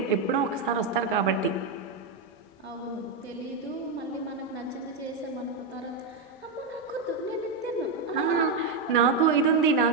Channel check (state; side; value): quieter; left; 4.0 dB